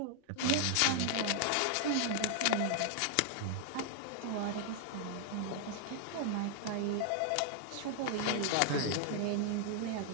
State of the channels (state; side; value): different; both; correlation 0.00